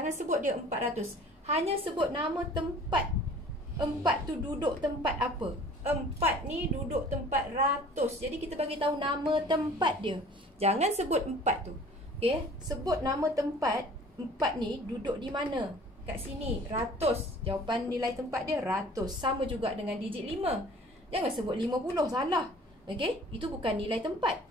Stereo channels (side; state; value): both; normal; correlation 0.48